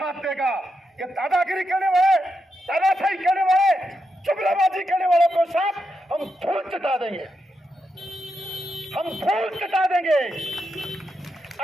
देगा। ये दादागिरी करने वाले, दादाशाही करने वाले, जुमलाबाजी करने वालों को साथ हम धूल चटा देंगे, हम धूल चटा देंगे।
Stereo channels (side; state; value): both; normal; correlation 0.84